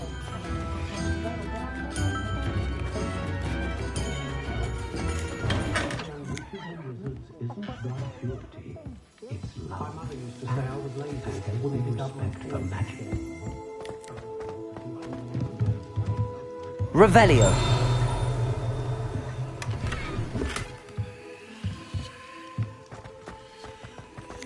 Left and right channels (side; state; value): both; identical; correlation 1.00